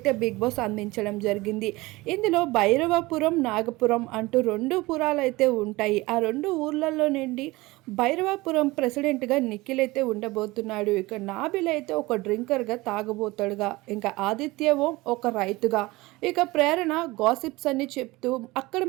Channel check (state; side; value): quieter; left; 21.1 dB